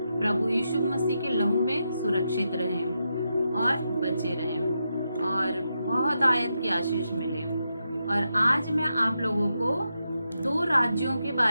प्रभु यीशु मसीह के लहू में सुरक्षित रहें और बचे रहें और बहुत आयत की आशीष मिले। और आज मैं आप लोगों को 2 राज्यों के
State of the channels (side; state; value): both; inverted; correlation -0.85